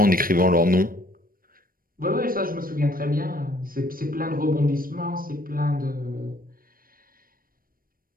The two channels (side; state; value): left; late; 0.41 ms